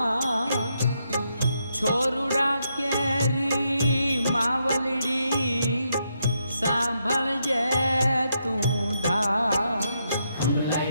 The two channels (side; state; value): both; inverted; correlation -0.80